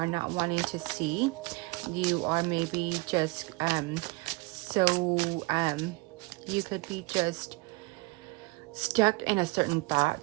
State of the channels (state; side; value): quieter; left; 25.8 dB